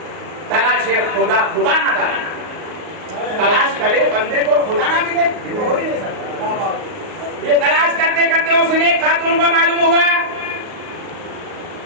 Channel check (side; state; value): left; late; 38 ms